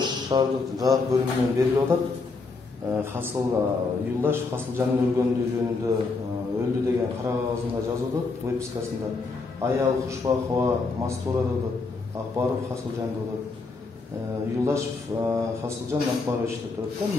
şahardык жак бөлүмүнөн берилип атат. Hasıl Yıldaş Hasılcan'ın ölgöndüğü жөнүндө öldü деген кара кагазында жазып атат, выпискасында. Аял Кушбакова Мастура деп Акбаров Hasılcan деп. Yıldaş Hasılcan Акбарович деп турат да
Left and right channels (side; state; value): right; quieter; 4.0 dB